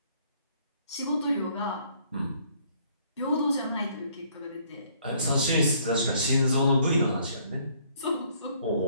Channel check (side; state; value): both; inverted; correlation -0.64